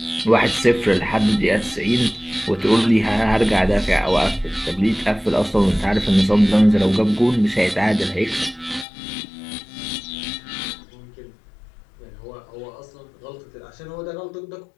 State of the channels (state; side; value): drops out; right; at 8.8 s